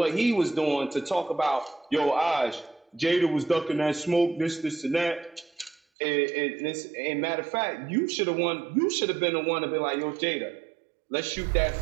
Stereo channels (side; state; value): left; drops out; at 5.8 s